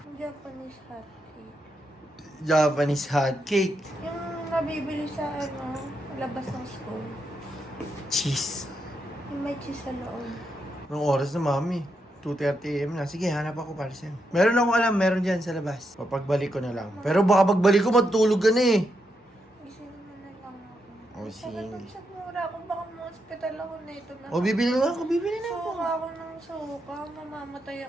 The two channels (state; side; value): normal; both; correlation 0.82